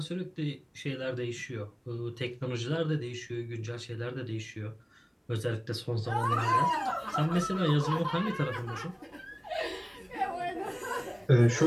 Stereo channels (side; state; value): both; identical; correlation 1.00